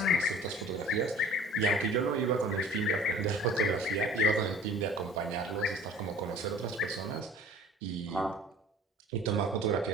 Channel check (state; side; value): normal; both; correlation 0.47